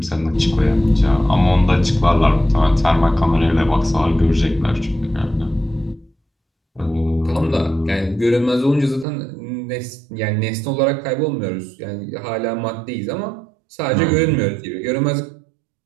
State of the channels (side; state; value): left; drops out; at 9.1 s